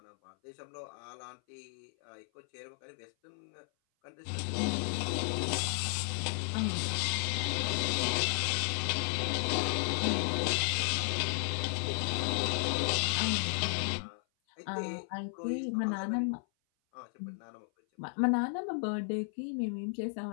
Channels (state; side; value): silent; right; 55 dB below the other